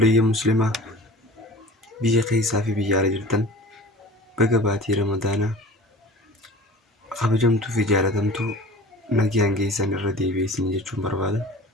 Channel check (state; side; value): normal; both; correlation 0.41